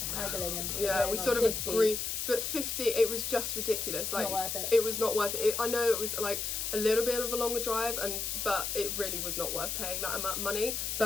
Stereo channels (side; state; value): left; noise; hiss, 2 dB below the sound